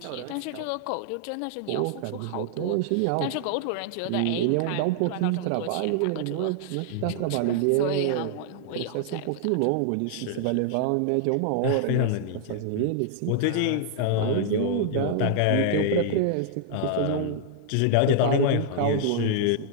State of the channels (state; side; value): different; both; correlation 0.00